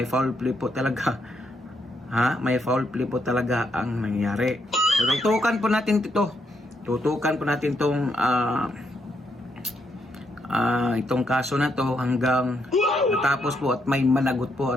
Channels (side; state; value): both; normal; correlation 0.77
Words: foul play po talaga, may foul play po talaga ang nangyari. So, tutukan po natin itong itong kaso na to hanggang matapos po at may managot po